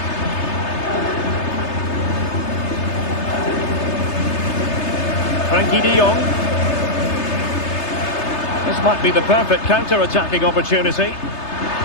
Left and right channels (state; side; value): late; right; 3.3 ms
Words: Frankie de Jong. This might be the perfect counter-attacking opportunity.